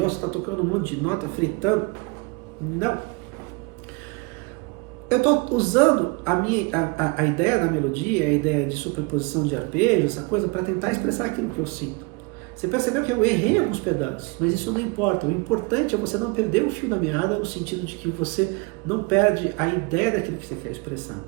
você está tocando um monte de nota, fritando? Não. Eu estou usando a ideia da melodia, a ideia de superposição de arpejos, essa coisa, para tentar expressar aquilo que eu sinto. Você percebeu que eu errei alguns pedaços, mas isso não importa. O importante é você não perder o fio da meada, no sentido de que você não perde a ideia daquilo que você quer expressar.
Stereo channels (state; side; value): quieter; left; 28.7 dB